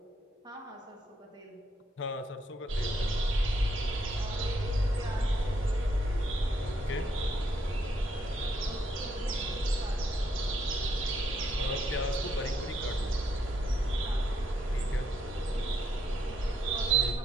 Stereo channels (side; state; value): both; normal; correlation 0.75